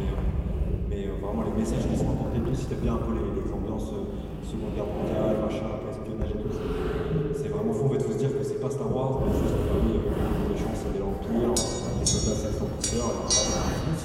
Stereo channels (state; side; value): identical; both; correlation 1.00